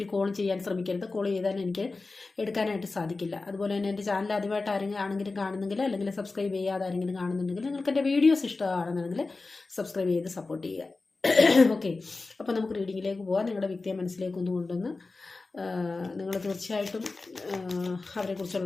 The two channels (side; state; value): right; quieter; 3.7 dB